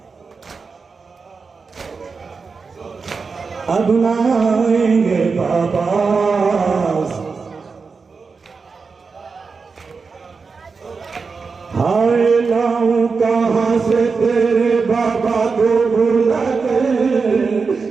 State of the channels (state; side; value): quieter; left; 4.8 dB